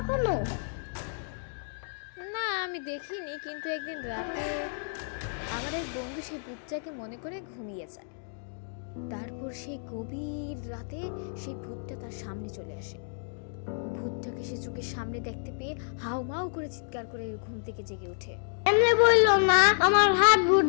না, আমি দেখিনি, কিন্তু একদিন রাতে আমার এক বন্ধু সেই ভূতটাকে মনে করে ঘুমিয়ে যায়। তারপর সেই গভীর রাতে সেই ভূতটা তার সামনে চলে আসে। ভূতটাকে সে চোখের সামনে দেখতে পেয়ে হাউমাউ করে চিৎকার করে ঘুম থেকে জেগে ওঠে। এমনি বললো না, আমার হাত ভূত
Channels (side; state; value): right; silent; digital silence